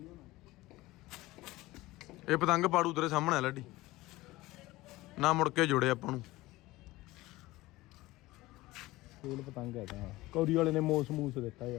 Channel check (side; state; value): right; quieter; 18.9 dB